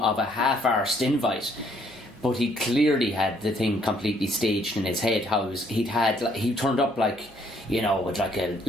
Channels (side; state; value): right; noise; hum, 27 dB below the sound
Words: a half-arsed invite. But he clearly had the thing completely staged in his head. He turned up like, you know, with like a